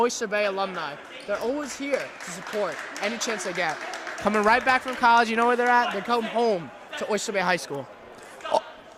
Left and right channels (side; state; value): both; identical; correlation 1.00